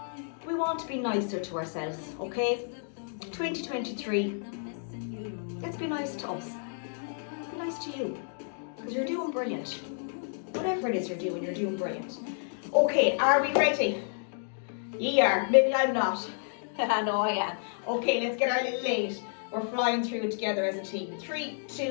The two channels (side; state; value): right; silent; digital silence